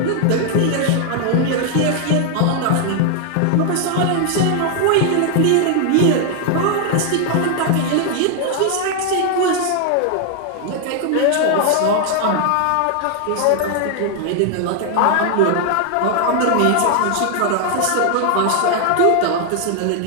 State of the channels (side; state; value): both; different; correlation 0.00